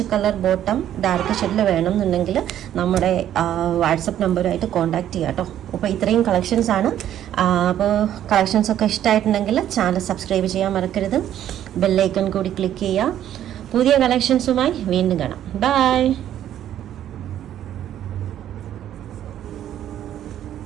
കളർ ബോട്ടം ഡാർക്ക് ഷെയ്ഡിൽ വേണമെന്നുണ്ടെങ്കിൽ നമ്മുടെ വാട്സപ്പ് നമ്പറുമായിട്ട് കോൺടാക്ട് ചെയ്യാം കേട്ടോ. അപ്പോൾ ഇത്രയും കളക്ഷൻസ് ആണ്. അപ്പോൾ കളക്ഷൻസൊക്കെ ഇഷ്ടമായിട്ടുണ്ടെങ്കിൽ ചാനൽ സബ്സ്ക്രൈബ് ചെയ്യാൻ മറക്കരുത്. ബെല്ലൈക്കൺ കൂടി ക്ലിക്ക് ചെയ്യുക. പുതിയ കളക്ഷൻസുമായി വീണ്ടും കാണാം. ബൈ.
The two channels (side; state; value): left; quieter; 11.2 dB